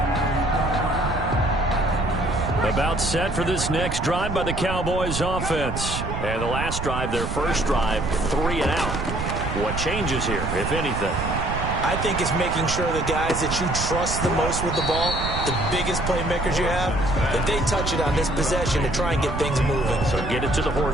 About set for this next drive by the Cowboys offense. And the last drive, their first drive, 3 and out. What changes here, if anything? I think it's making sure the guys that you trust the most with the ball, the biggest playmakers you have, that they touch it on this possession to try and get things moving. So get it to the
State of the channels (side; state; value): right; noise; rumble, 4 dB below the sound